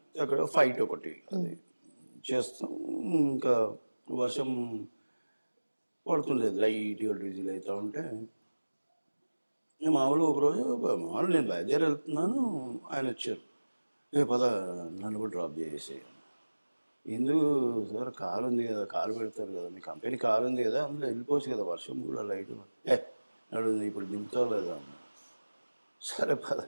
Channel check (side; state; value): both; inverted; correlation -1.00